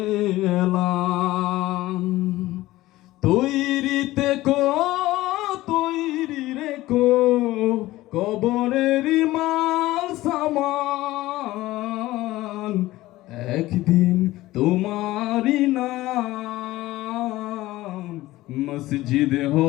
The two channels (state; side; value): quieter; right; 17.2 dB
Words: এলাম। তৈরিতে তৈরি রেখো কবরের মাল সামান। একদিন তোমারি নাম মসজিদে